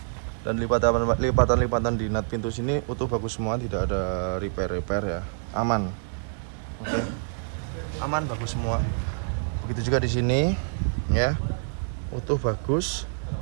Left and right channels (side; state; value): left; silent; digital silence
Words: Dan lipatan-lipatan di nut pintu sini utuh bagus semua, tidak ada repair ya, aman. Oke, aman, bagus semua. Begitu juga di sini ya, utuh bagus.